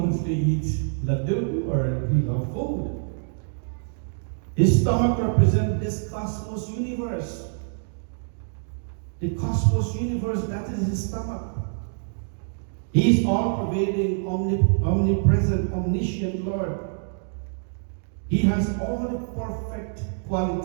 to eat laddu or he loves food. His stomach represents this cosmos universe. The cosmos universe, that is his stomach. He is all-pervading, omnipresent, omniscient Lord. He has all the perfect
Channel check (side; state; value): left; silent; digital silence